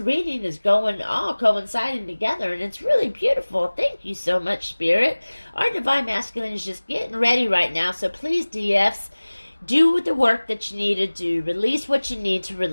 is going all coinciding together, and it's really beautiful. Thank you so much, Spirit. Our divine masculine is just getting ready right now. So please, DFs, do the work that you need to do. Release what you need to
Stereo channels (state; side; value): inverted; both; correlation -1.00